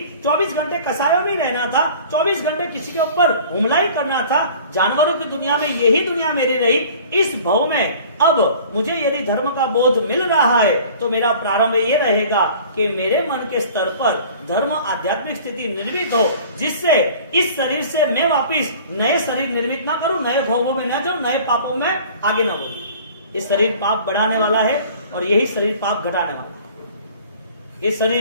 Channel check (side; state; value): both; inverted; correlation -0.46